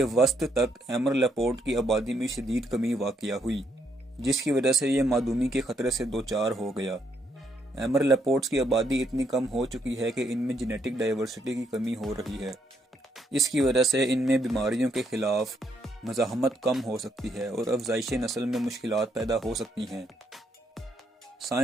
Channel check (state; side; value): normal; both; correlation 0.74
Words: وسط تک ایمر لیپرڈ کی آبادی میں شدید کمی واقع ہوئی، جس کی وجہ سے یہ معدومی کے خطرے سے دوچار ہو گیا۔ ایمر لیپرڈز کی آبادی اتنی کم ہو چکی ہے کہ ان میں جینیٹک ڈائیورسٹی کی کمی ہو رہی ہے۔ اس کی وجہ سے ان میں بیماریوں کے خلاف مزاحمت کم ہو سکتی ہے اور افزائش نسل میں مشکلات پیدا ہو سکتی ہیں۔